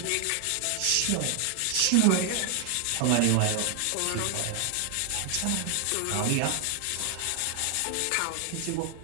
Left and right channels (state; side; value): different; both; correlation 0.00